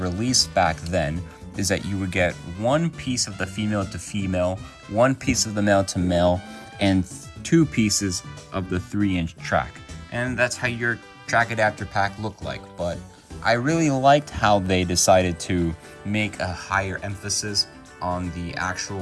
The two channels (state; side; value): identical; both; correlation 1.00